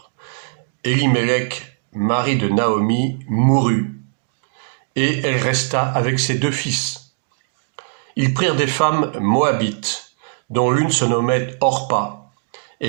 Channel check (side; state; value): left; silent; 65 dB below the other